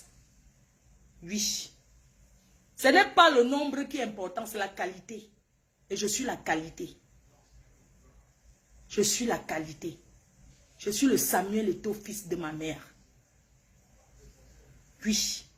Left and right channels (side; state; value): both; identical; correlation 1.00